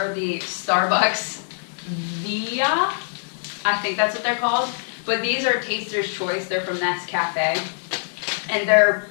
the Starbucks Via, I think that's what they're called, but these are Taster's Choice. They're from Nescafe, and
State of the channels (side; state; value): right; silent; 55 dB below the other